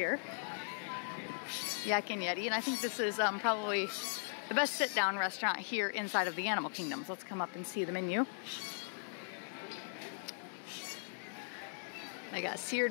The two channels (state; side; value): silent; right; digital silence